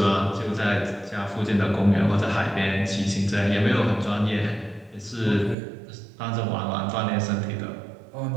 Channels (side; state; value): left; drops out; at 5.6 s